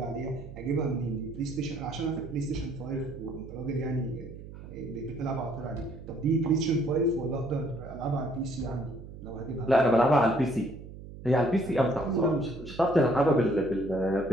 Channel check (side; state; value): right; noise; hum, 14 dB below the sound